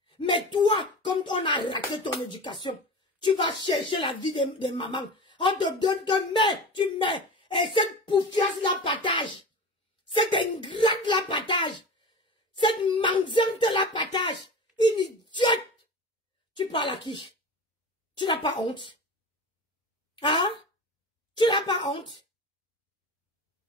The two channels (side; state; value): both; normal; correlation 0.31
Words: Mais toi, comme on a raté ton éducation, tu vas chercher la vie des mamans. On te donne que mets, tu mets. Et cette poufiasse la partage. Cette ingrate la partage. Cette mendiante la partage. Une idiote. Tu parles à qui? Tu n'as pas honte? Hein? Tu n'as pas honte?